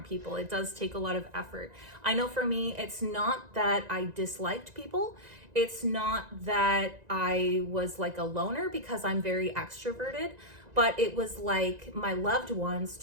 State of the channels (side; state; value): left; late; 1.9 ms